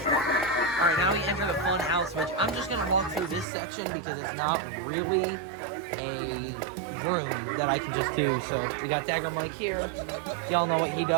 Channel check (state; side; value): drops out; left; at 3.5 s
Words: Alright, now we enter the Funhouse, which I'm just going to walk through this section because it's not really a room that I can just do. So we got Dagger Mike here. Y'all know what he